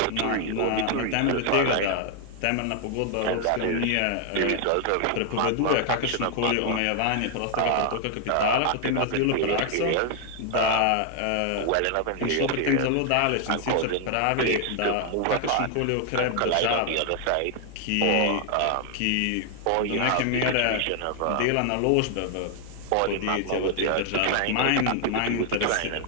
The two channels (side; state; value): both; different; correlation 0.00